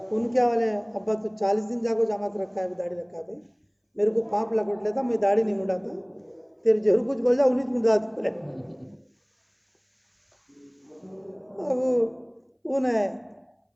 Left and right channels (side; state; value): both; identical; correlation 1.00